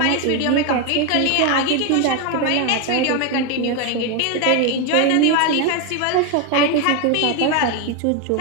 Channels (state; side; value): different; both; correlation 0.02